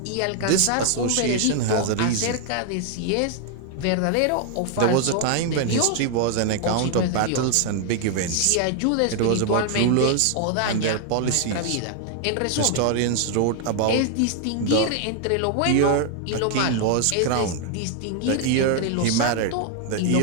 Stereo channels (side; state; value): both; different; correlation 0.00